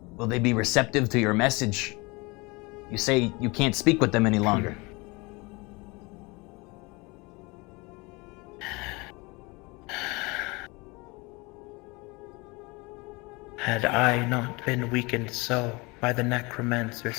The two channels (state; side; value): quieter; right; 25.9 dB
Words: Will they be receptive to your message? You say you can't speak with them any longer. Had I not been weakened so by the